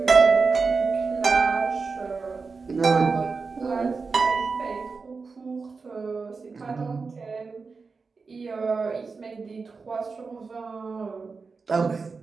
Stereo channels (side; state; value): left; quieter; 4.6 dB